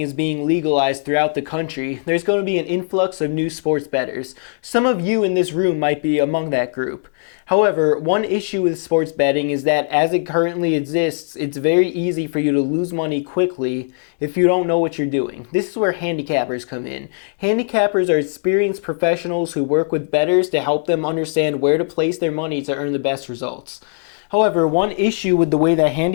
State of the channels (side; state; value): right; silent; digital silence